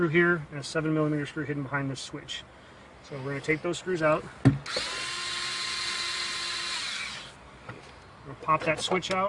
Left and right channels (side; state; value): both; identical; correlation 1.00